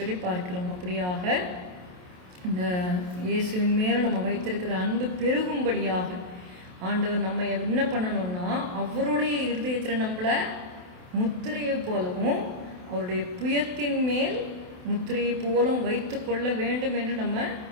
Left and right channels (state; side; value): late; left; 28 ms